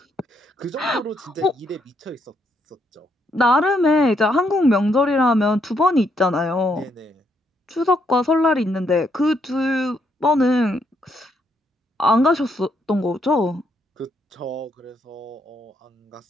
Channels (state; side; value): normal; both; correlation 0.74